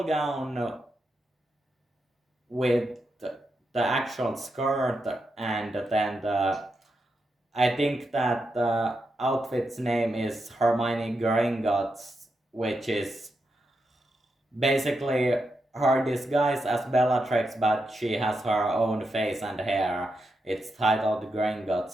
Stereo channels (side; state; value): both; normal; correlation 0.85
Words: gown with the actual skirt and then I think that the outfit's name is Hermione Gringotts, which is basically her disguise as Bellatrix, but she has her own face and hair. It's titled